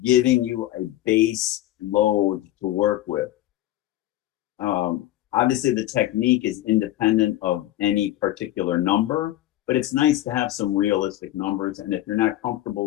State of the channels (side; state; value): right; quieter; 14.6 dB